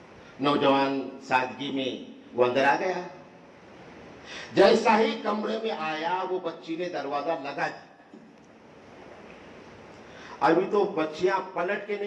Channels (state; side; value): identical; both; correlation 1.00